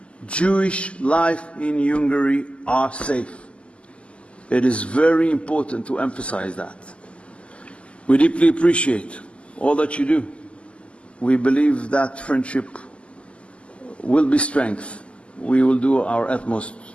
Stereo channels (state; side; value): late; right; 0.056 ms